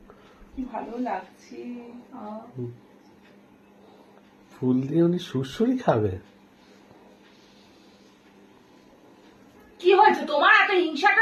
কি ভালো লাগছে। ফুল দিয়ে উনি সুড়সুড়ি খাবে? কি হয়েছে তোমার? এত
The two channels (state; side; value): identical; both; correlation 1.00